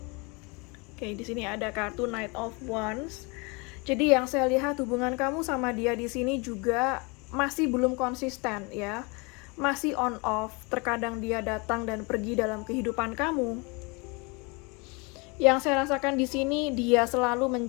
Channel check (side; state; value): right; quieter; 29.4 dB